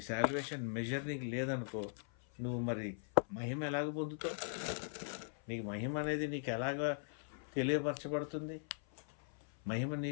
సాల్వేషన్ మెజర్ నీకు లేదనుకో, నువ్వు మరి మహిమ ఎలాగ పొందుతావు? నీకు మహిమ అనేది నీకు ఎలాగ తెలియపరచబడుతుంది? మహిమ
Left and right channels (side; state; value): right; silent; 51 dB below the other